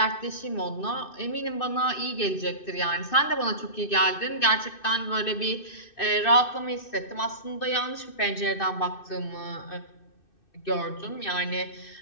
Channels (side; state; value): right; late; 2.6 ms